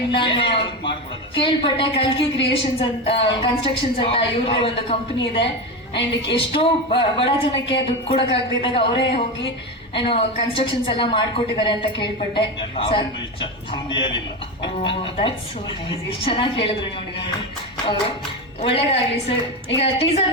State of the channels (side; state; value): both; normal; correlation 0.18